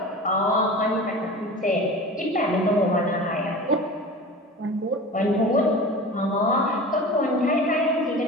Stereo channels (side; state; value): both; normal; correlation 0.35